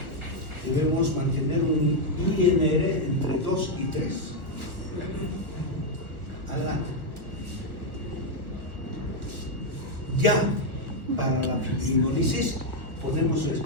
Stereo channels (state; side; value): late; left; 1.6 ms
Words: debemos mantener un INR entre 2 y 3. Adelante. Ya para la fibrinolisis podemos